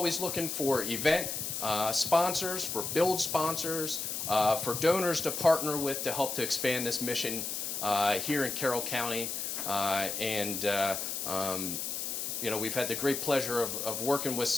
looking for event sponsors, for build sponsors, for donors to partner with to help to expand this mission here in Carroll County, we've had the great pleasure of working with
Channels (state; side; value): noise; left; hiss, 3 dB below the sound